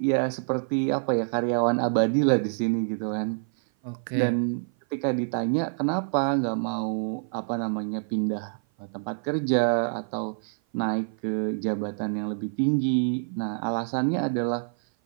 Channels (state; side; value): silent; left; 56 dB below the other